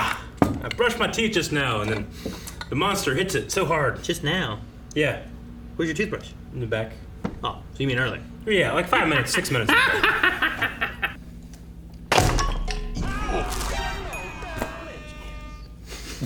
I brushed my teeth just now, and then the monster hits it so hard. Just now? Yeah. Where's your toothbrush? In the back. Oh, so you mean earlier? Yeah, like 5 minutes, 6 minutes.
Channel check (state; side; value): identical; both; correlation 1.00